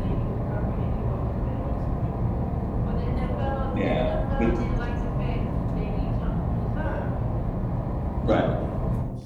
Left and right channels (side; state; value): both; identical; correlation 1.00